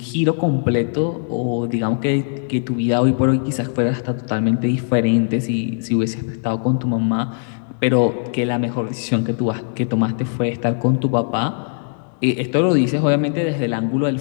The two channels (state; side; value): silent; right; digital silence